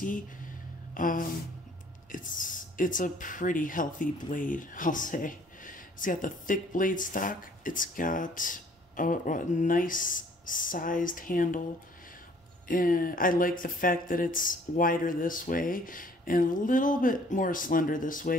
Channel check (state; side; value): normal; both; correlation 0.58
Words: it's a pretty healthy blade, I'll say. It's got the thick blade stock. It's got a nice sized handle. And I like the fact that it's wider this way and a little bit more slender this